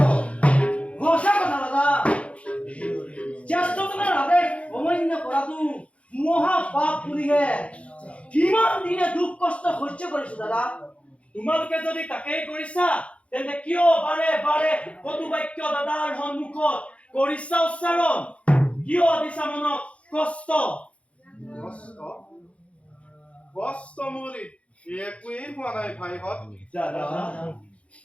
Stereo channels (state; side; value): late; right; 0.063 ms